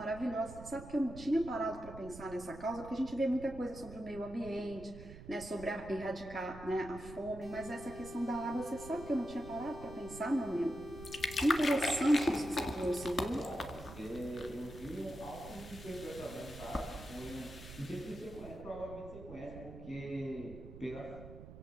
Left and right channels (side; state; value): right; noise; rumble, 13 dB below the sound